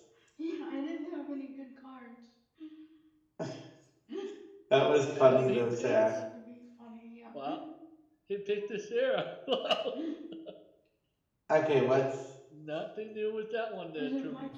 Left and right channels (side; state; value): both; identical; correlation 1.00